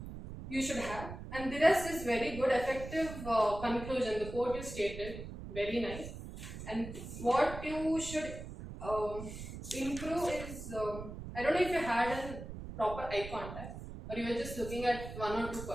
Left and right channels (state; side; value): noise; right; rumble, 10 dB below the sound